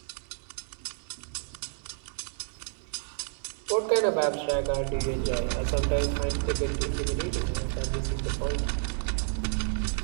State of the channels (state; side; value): silent; left; 58 dB below the other